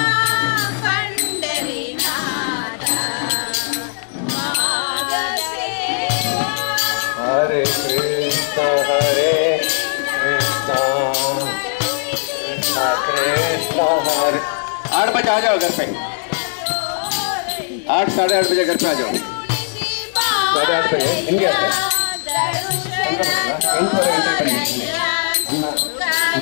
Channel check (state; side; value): silent; right; 66 dB below the other